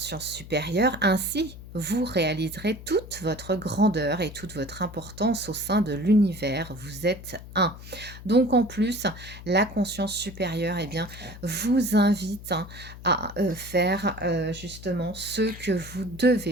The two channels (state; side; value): noise; left; hum, 15 dB below the sound